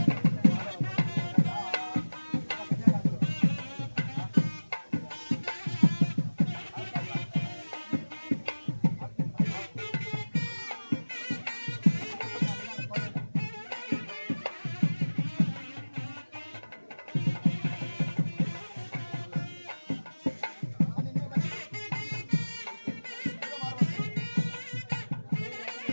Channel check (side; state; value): both; inverted; correlation -1.00